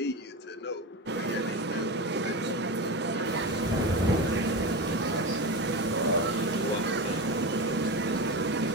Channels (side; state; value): both; normal; correlation 0.21